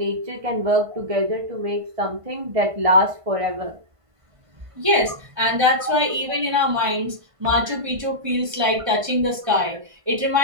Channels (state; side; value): late; left; 1.5 ms